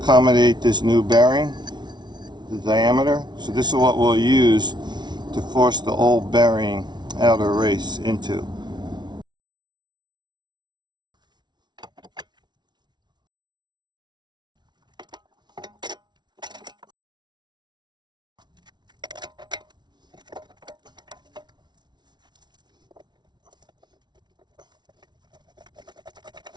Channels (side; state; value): left; late; 0.20 ms